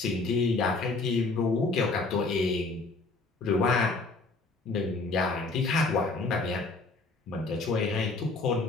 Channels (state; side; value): quieter; right; 3.6 dB